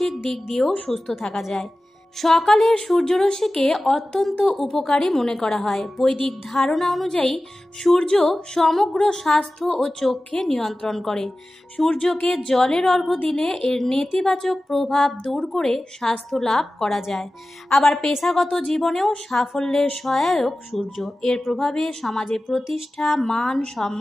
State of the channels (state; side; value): normal; both; correlation 0.96